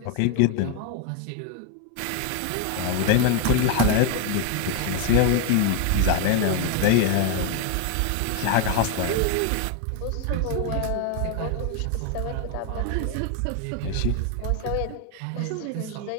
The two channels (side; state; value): both; different; correlation 0.01